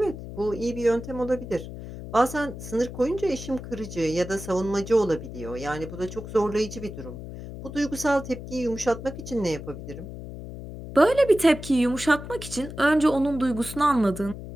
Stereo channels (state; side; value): noise; left; hum, 11 dB below the sound